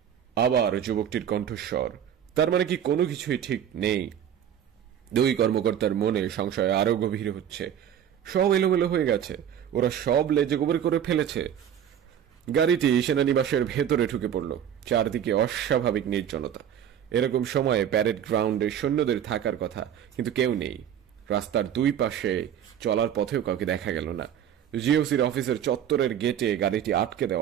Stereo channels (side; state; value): left; quieter; 9.5 dB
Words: আবার যুবকটির কণ্ঠস্বর, তার মানে কি কোনো কিছুই ঠিক নেই? দুই কর্মকর্তার মনে সংশয় আরো গভীর হচ্ছে। সব এলোমেলো হয়ে গেছে, ওরা সব লেজে গোবর করে ফেলেছে। গাড়িটি সেনানিবাসের ভেতরে ঢুকে পড়ল। চারদিকে অস্বাভাবিক নির্জনতা। এরকম সময়ে প্যারেড গ্রাউন্ডে সৈন্যদের থাকার কথা, কিন্তু কেউ নেই। রাস্তার দুই পাশে চলার পথেও কাউকে দেখা গেল না। জিওসির অফিসের চত্বরের গেটে গাড়িটি আটকে